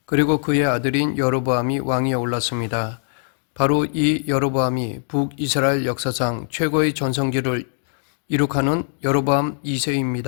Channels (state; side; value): silent; right; digital silence